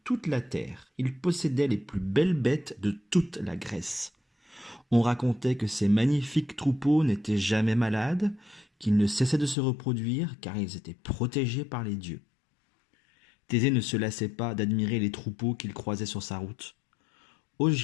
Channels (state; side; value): drops out; right; at 9.6 s